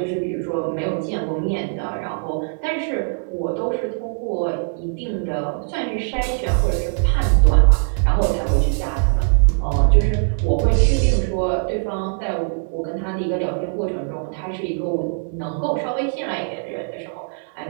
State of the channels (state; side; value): silent; left; 65 dB below the other